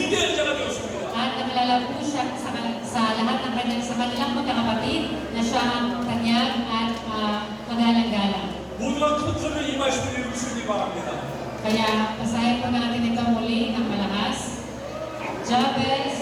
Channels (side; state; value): both; identical; correlation 1.00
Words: 자가 되었습니다. At nakilala po siya sa lahat ng kanyang sa kanilang magkakapatid na siya ang tanyag at magalang-galang. 모두가 큰 소리로 이 말씀을 읽으시기 바랍니다. Kaya basahin po natin ito muli ng malakas.